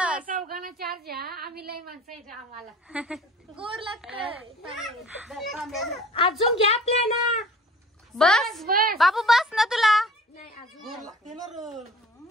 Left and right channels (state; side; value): normal; both; correlation 0.46